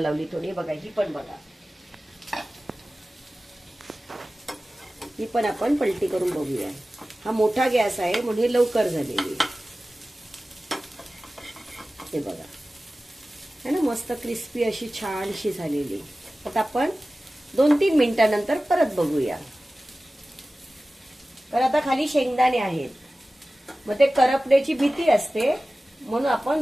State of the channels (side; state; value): both; normal; correlation 0.96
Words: थोडी। बघा, ही पण बघा, ही पण आपण पलटी करून बघूया. हा मोठा गॅस आहे म्हणून हे लवकर झालेली आहे. हे बघा है ना, मस्त क्रिस्पी अशी छानशी झालेली. आता आपण 2-3 मिनिटांनंतर परत बघूया. तर आता खाली शेंगदाणे आहेत, मग ते करपण्याची भीती असते म्हणून आपण